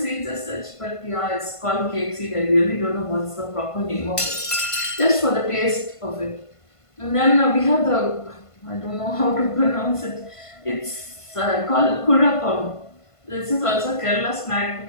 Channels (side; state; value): right; late; 1.5 ms